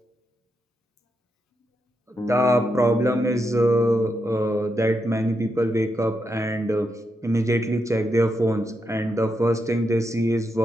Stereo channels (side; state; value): both; normal; correlation 0.83